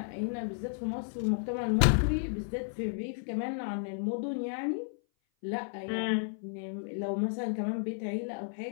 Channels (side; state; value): right; silent; 56 dB below the other